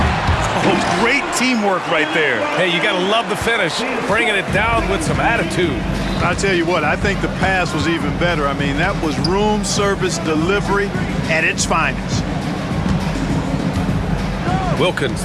Oh, great teamwork right there. Hey, you got to love the finish, bringing it down with some attitude. I'll tell you what, I think the pass was even better. I mean, that was room service delivery at its finest. Wilkins,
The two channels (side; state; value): both; identical; correlation 1.00